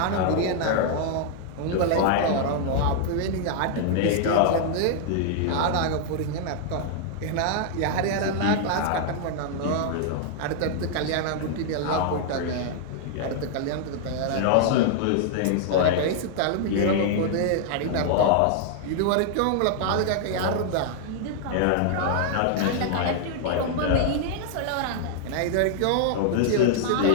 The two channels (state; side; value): different; both; correlation 0.00